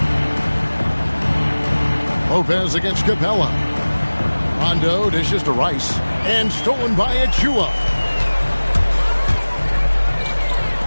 Lopez against Capella. Rondo dishes to Rice. And stolen by Achua.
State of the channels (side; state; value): both; inverted; correlation -1.00